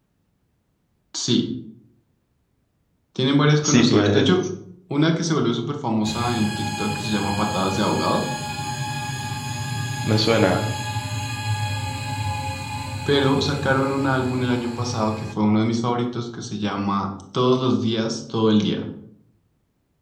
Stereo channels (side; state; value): both; identical; correlation 1.00